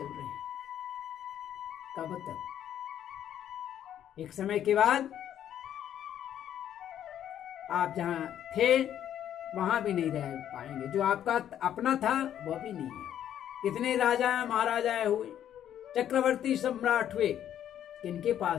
रहे हैं। कब तक? एक समय के बाद आप जहां थे वहां भी नहीं रह पाएंगे। जो आपका अपना था वह भी नहीं है। कितने राजा महाराजा हुए, चक्रवर्ती सम्राट हुए, किनके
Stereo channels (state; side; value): quieter; right; 10.5 dB